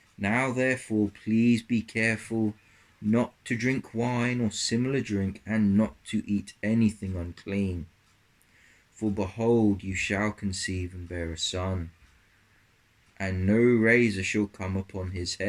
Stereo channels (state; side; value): identical; both; correlation 1.00